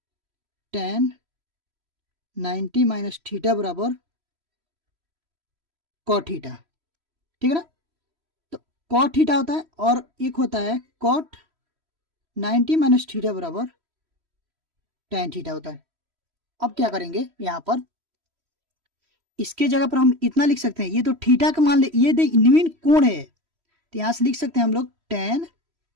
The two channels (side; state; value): left; late; 3.1 ms